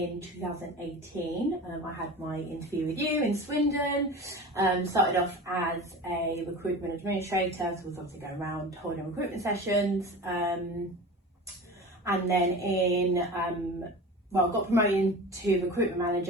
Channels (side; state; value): both; normal; correlation 0.33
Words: 2018 I had my interview with you in Swindon. Started off as a recruitment administrator, so I was obviously going around holding recruitment sessions, and then got promoted to recruitment